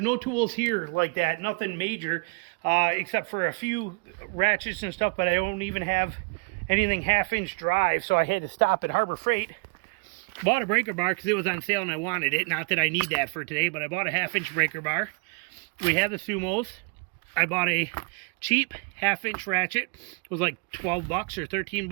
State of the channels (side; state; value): left; quieter; 31.6 dB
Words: no tools here like that, nothing major, except for a few ratchets and stuff, but I don't even have anything 1/2 inch drive, so I had to stop at Harbor Freight. Bought a breaker bar because it was on sale and I wanted it. Not that I need that for today, but I bought a 1/2 inch breaker bar. We have the Sumos. I bought a cheap 1/2 inch ratchet. It was like 12 bucks or 13